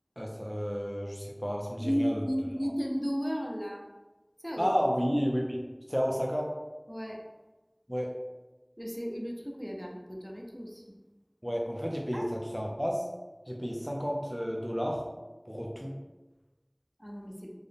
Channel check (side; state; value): both; identical; correlation 1.00